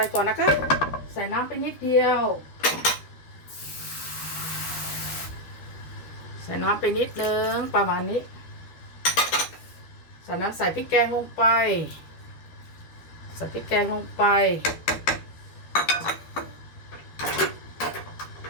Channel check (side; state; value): right; late; 12 ms